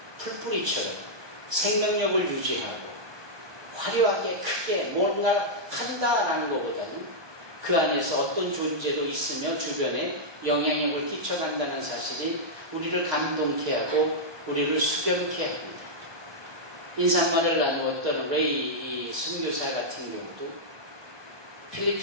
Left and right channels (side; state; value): left; late; 1.2 ms